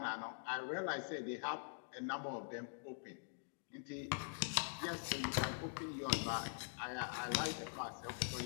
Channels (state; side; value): silent; right; digital silence